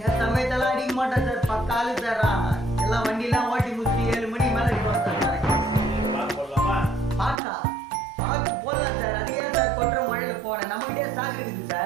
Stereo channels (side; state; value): left; drops out; at 7.4 s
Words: சமயத்தெல்லாம் அடிக்க மாட்டேன் சார். பக்காலு சார். எல்லாம் வண்டிலாம் ஓட்டி முடிச்சு 7 மணி மேல இருப்போம் சார். பாக்கு போடலாமா? பாக்கா பாக்கு போடலாம் சார். அது ஏன் சார் கொட்டுற மழையில போனேன்? நம்மகிட்டே சாக்கு இருக்குது